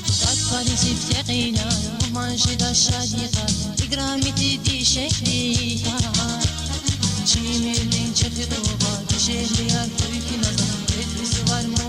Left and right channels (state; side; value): identical; both; correlation 1.00